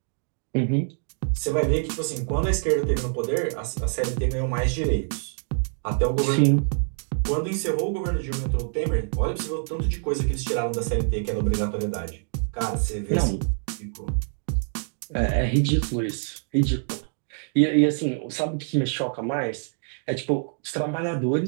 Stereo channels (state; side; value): silent; left; 57 dB below the other